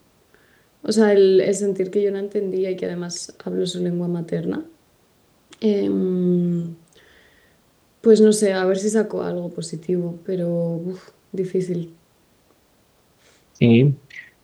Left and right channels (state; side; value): identical; both; correlation 1.00